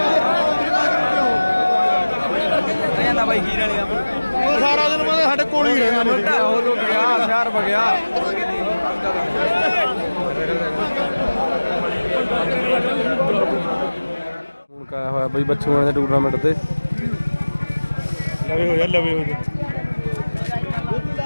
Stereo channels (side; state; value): both; inverted; correlation -1.00